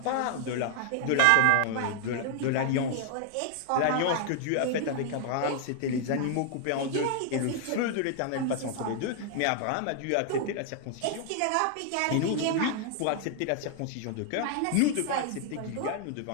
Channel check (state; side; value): different; both; correlation 0.00